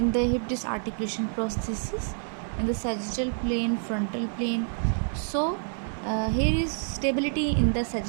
the hip disc articulation prosthesis in the sagittal plane, frontal plane. So here is stability in the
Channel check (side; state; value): left; silent; digital silence